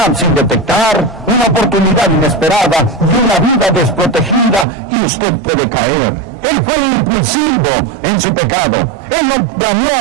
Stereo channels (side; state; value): left; drops out; at 4.7 s